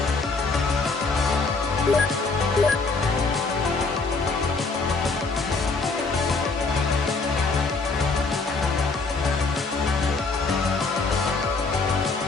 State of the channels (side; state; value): right; quieter; 4.0 dB